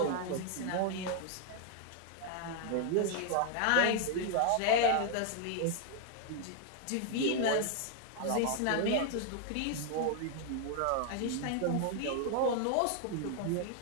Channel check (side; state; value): both; different; correlation 0.00